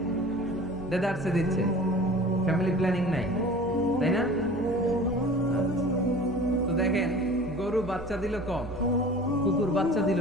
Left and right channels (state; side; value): normal; both; correlation 0.42